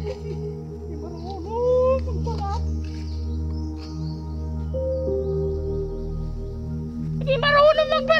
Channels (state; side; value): identical; both; correlation 1.00